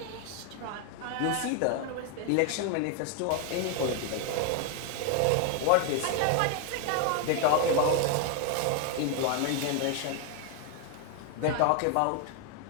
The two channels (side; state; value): both; different; correlation 0.01